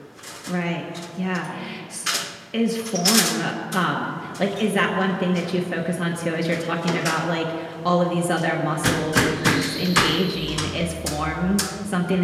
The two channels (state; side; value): identical; both; correlation 1.00